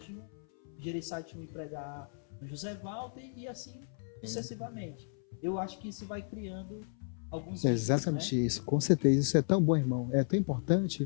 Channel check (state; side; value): silent; right; 55 dB below the other